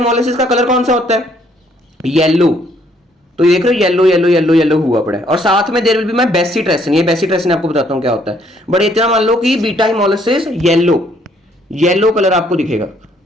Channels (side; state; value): both; normal; correlation 0.66